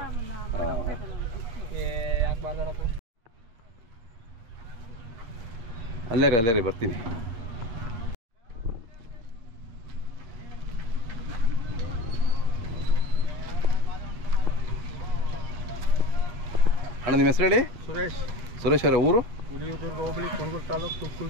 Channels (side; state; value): left; late; 8.7 ms